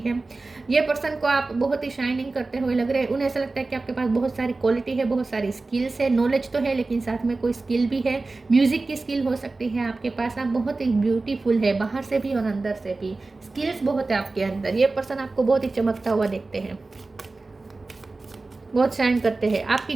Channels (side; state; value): left; quieter; 3.5 dB